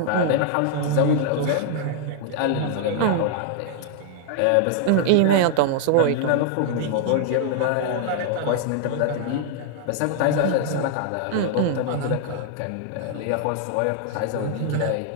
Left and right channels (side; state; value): both; different; correlation 0.00